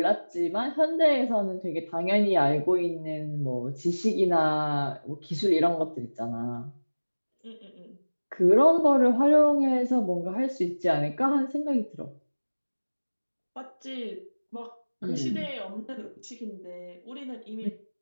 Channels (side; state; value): both; inverted; correlation -1.00